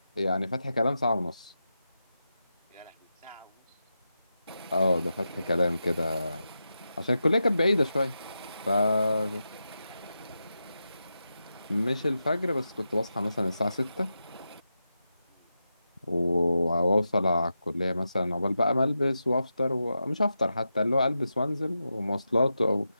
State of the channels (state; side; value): inverted; both; correlation -0.89